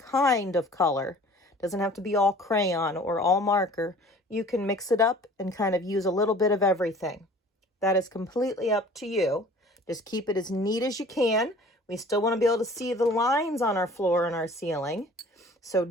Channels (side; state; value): both; normal; correlation 0.48